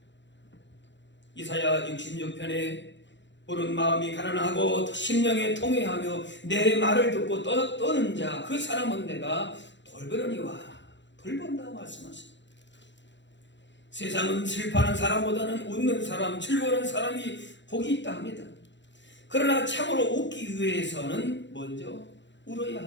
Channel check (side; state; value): right; late; 0.53 ms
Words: 이사야 66편에 우는 마음이 가난하고 심령에 통회하며 내 말을 듣고 떠는 자 그 사람은 내가 돌보려니와 돌본다고 말씀하십니다. 세상은 슬퍼하는 사람보다는 웃는 사람, 즐거워하는 사람이 복이 있다 합니다. 그러나 참으로 웃기 위해서는 먼저 울어야